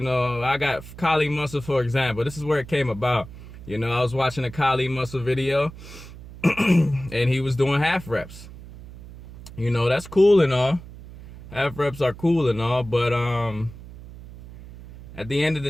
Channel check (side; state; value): right; noise; hum, 16 dB below the sound